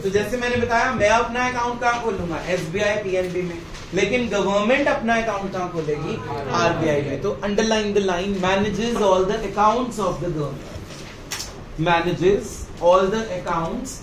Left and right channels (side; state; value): both; identical; correlation 1.00